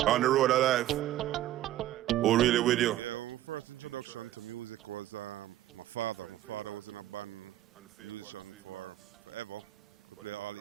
On the road alive. Oh, really with you? Yeah, well, my first introduction to music was my father. My father was in a band, a musician for forever. Could play all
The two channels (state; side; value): quieter; left; 13.8 dB